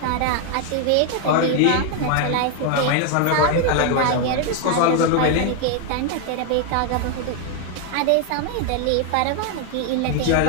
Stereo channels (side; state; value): both; different; correlation 0.00